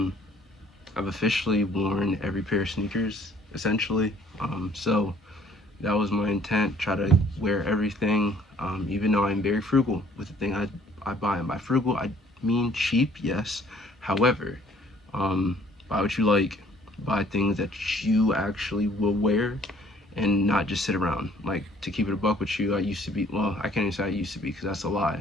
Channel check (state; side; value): normal; both; correlation 0.58